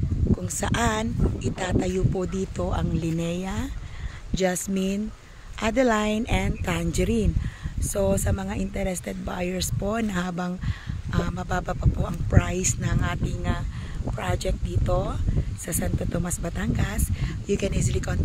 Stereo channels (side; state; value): both; identical; correlation 1.00